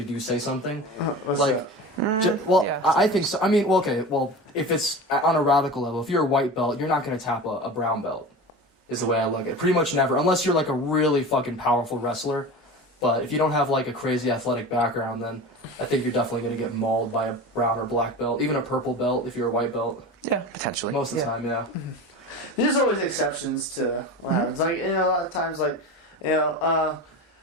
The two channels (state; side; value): normal; both; correlation 0.31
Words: do say something. I think so. I mean, if it's on a radical level, if you're a white belt, you're not going to tap a brown belt. Is the way I look at it. Pretty much never, unless you're like a really fucking powerful wrestler. But if you don't have like a crazy athletic background, then I think you're definitely going to get mauled by a brown or black belt, even a purple belt if you're a white belt. Yeah, potentially. Most of the time, yeah. There's always exceptions to what happens. Like a lot of times, like the